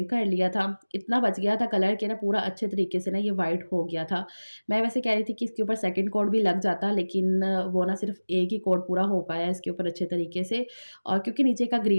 कर लिया था। इतना बच गया था कलर के ना, पूरा अच्छे तरीके से ना ये वाइट हो गया था। मैं वैसे कह रही थी कि इसके ऊपर सेकंड कोट भी लग जाता, लेकिन वो ना सिर्फ़ एक ही कोट पूरा हो पाया इसके ऊपर अच्छे तरीके से। और क्योंकि नीचे का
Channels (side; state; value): both; inverted; correlation -1.00